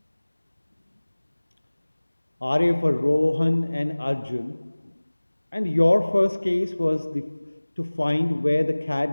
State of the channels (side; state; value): both; inverted; correlation -1.00